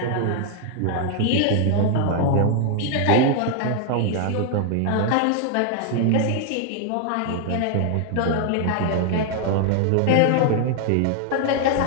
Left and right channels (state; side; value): different; both; correlation 0.00